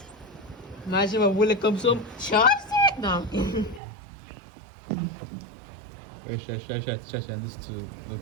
Imagine when Willie comes home. Chopstick? No. Wait, should I send this to the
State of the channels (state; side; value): drops out; left; at 3.8 s